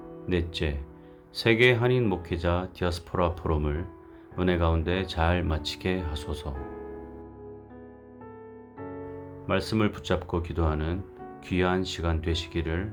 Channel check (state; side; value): identical; both; correlation 1.00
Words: 넷째, 세계 한인 목회자 디아스포라 포럼을 은혜 가운데 잘 마치게 하소서. 말씀을 붙잡고 기도하는 귀한 시간